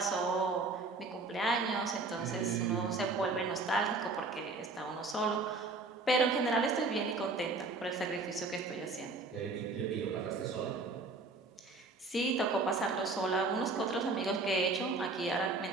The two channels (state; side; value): quieter; left; 3.6 dB